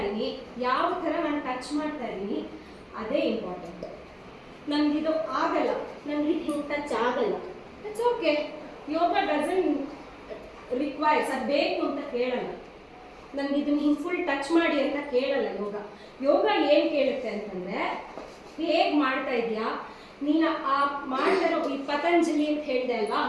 ಯಾವ ಥರ ನಾನು ಟಚ್ ಮಾಡ್ತಾ ಇದ್ದೀನಿ, ಅದೇ ಇಂಪಾರ್ಟೆಂಟ್. ನನಗಿದು ಆಗಲ್ಲ, ನನಗೆ ಹಿಂಗೆ ಟಚ್ ಆಗಲ್ಲ, it's okay. Yoga doesn't requires, ಅದು ಬೇಕು ಅಂತ ಕೇಳಲ್ಲ. ನನಗೆ ಇದನ್ನು ಹಿಂಗೆ ಫುಲ್ ಟಚ್ ಮಾಡಿ ಅಂತ ಕೇಳಲ್ಲ ಯೋಗ. ಯೋಗ ಏನು ಕೇಳುತ್ತೆ ಅಂತಂದರೆ, ಹೇಗೆ ಮಾಡ್ತಾ ಇದೆಯಾ ನೀನು. ಆ ಮಾಡ್ತಾರೋ ಈ ಪತಂಜಲಿ ಅಂತ ಹೇಳಿದೆ ಅಲ್ವಾ,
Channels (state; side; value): identical; both; correlation 1.00